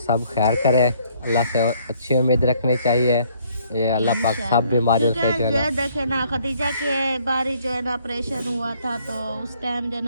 खैर करे। अल्लाह से अच्छी उम्मीद रखनी चाहिए, ये अल्लाह पाक सब बीमारियों से जो है देखे ना, खदीजा के बारी जो है ना ऑपरेशन हुआ था, तो उस टाइम जो है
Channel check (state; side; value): inverted; both; correlation -0.64